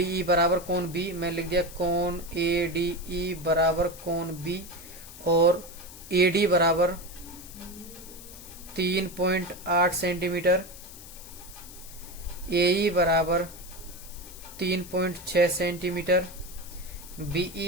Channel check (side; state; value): left; noise; hiss, 16 dB below the sound